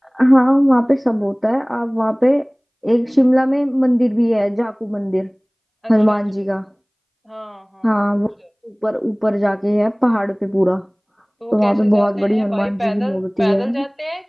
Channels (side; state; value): both; identical; correlation 1.00